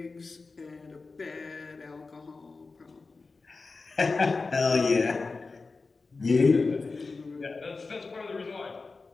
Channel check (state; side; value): quieter; right; 4.0 dB